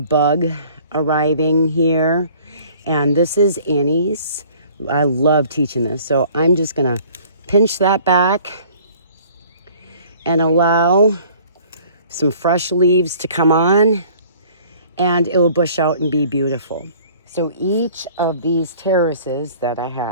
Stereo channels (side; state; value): both; inverted; correlation -0.53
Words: bug arriving here. And this is Annie's. I love teaching this. So I'm just gonna pinch that back and allow some fresh leaves to come on, and it will bush out and be beautiful. So each of these terraces that I